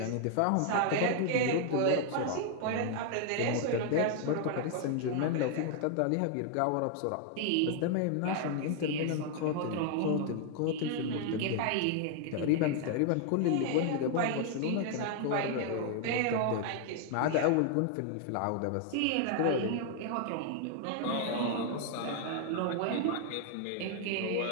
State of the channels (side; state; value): both; different; correlation 0.00